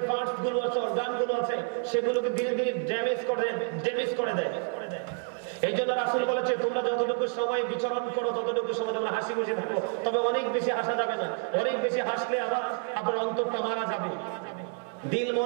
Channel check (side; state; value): left; quieter; 37.4 dB